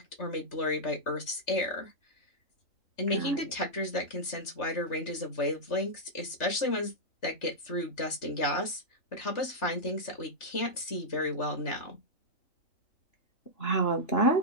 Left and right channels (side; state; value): right; late; 3.4 ms